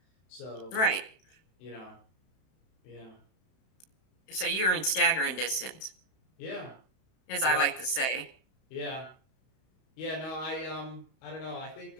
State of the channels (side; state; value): right; late; 32 ms